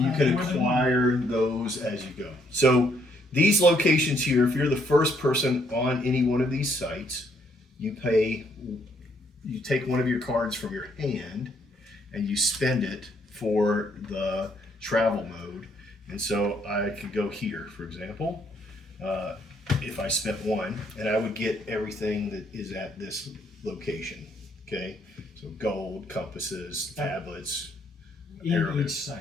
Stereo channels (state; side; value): normal; both; correlation 0.70